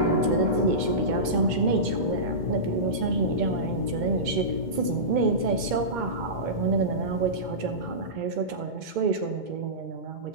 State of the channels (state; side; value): late; left; 2.2 ms